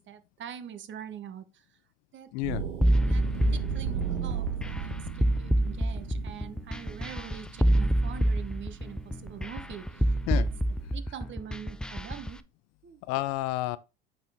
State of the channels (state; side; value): normal; both; correlation 0.81